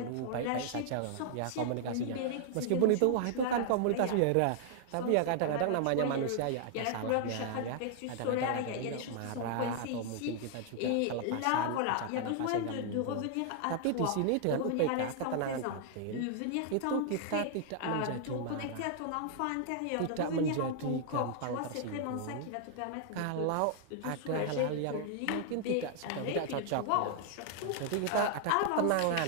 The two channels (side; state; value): both; different; correlation 0.00